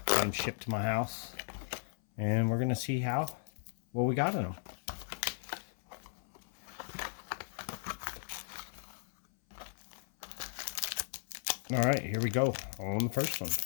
got them shipped to my house, and we're gonna see what we got in them. All right, here we go on the first one.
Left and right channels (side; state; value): right; silent; 54 dB below the other